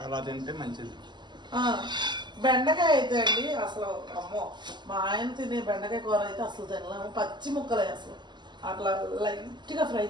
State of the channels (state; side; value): late; left; 0.21 ms